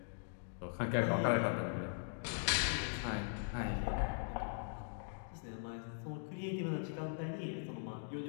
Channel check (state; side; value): silent; right; digital silence